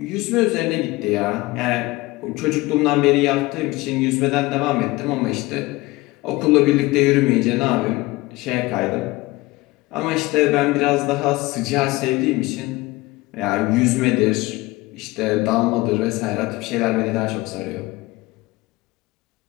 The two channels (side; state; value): right; quieter; 21.0 dB